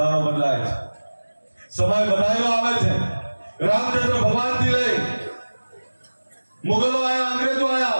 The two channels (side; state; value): both; inverted; correlation -1.00